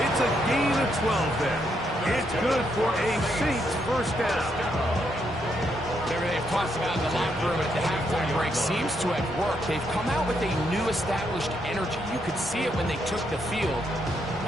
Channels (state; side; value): normal; both; correlation 0.77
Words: It's a gain of 12 there. It's good for a Saints first down. Everything they've talked about in the locker room at the halftime break seems to have worked. They've come out with a new established energy. You could see it when they took the field.